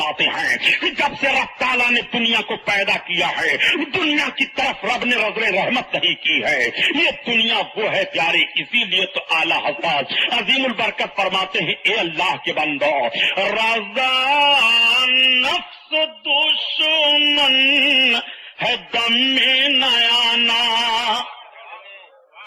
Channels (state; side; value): identical; both; correlation 1.00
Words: ہیں کہ جب سے رب تعالیٰ نے دنیا کو پیدا کیا ہے دنیا کی طرف رب نے نظر رحمت نہیں کی ہے، یہ دنیا وہ ہے پیارے، اسی لیے تو اعلیٰ حضرت عظیم البرکت فرماتے ہیں اے اللہ کے بندو رضا نفس دشمن ہے دم میں نیانا،